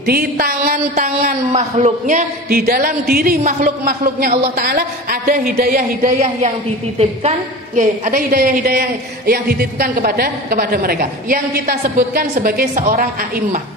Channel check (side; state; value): both; normal; correlation 0.33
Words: tangan-tangan makhluknya, di dalam diri makhluk-makhluknya Allah Ta'ala ada hidayah-hidayah yang dititipkan, ada hidayah-hidayah yang dititipkan kepada mereka, yang kita sebutkan sebagai seorang a'immah,